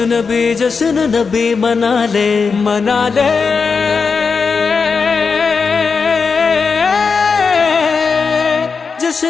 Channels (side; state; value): right; quieter; 5.1 dB